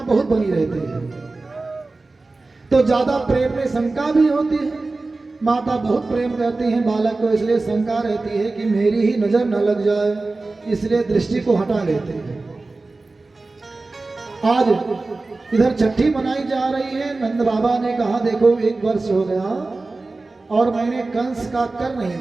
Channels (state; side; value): quieter; left; 3.4 dB